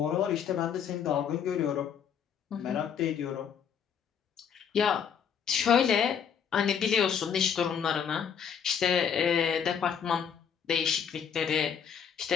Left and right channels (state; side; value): quieter; right; 7.7 dB